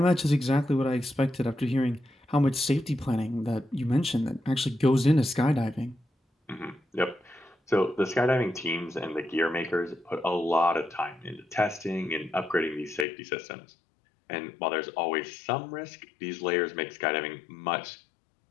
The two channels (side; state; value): right; drops out; at 13.1 s